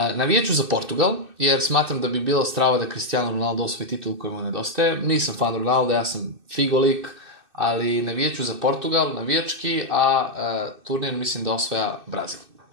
za Portugal, jer smatram da bi bilo strava da Cristiano Ronaldo osvoji titul koji mu nedostaje. Nisam fan Ronaldo, ja sam figolik, ali navijeću za Portugal, navijački, a turnir mislim da osvaja Brazil.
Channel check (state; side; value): late; left; 2.6 ms